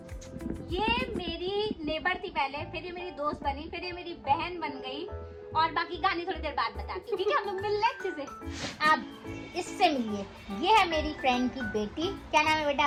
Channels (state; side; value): identical; both; correlation 1.00